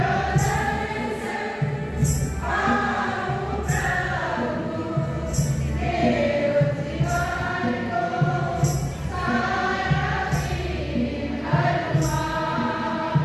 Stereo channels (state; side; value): identical; both; correlation 1.00